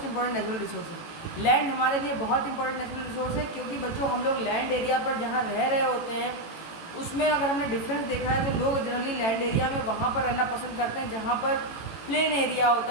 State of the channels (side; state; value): right; late; 18 ms